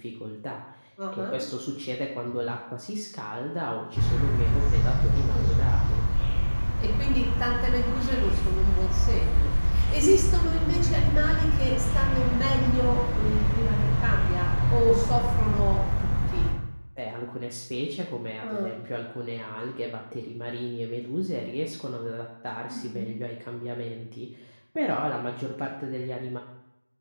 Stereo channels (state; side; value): inverted; both; correlation -1.00